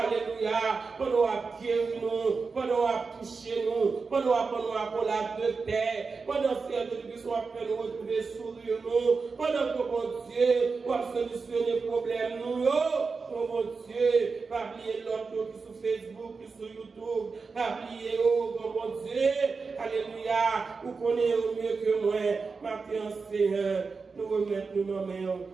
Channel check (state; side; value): quieter; left; 4.6 dB